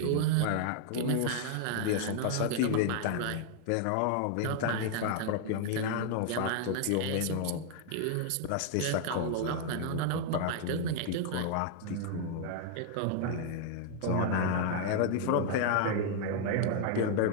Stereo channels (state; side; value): different; both; correlation 0.00